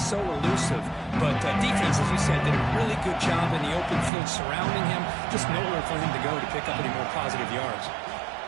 elusive. But defense, as you said, did a really good job in the open field surrounding him. Just nowhere for him to go to pick up any more positive yards.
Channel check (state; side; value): drops out; left; at 4.1 s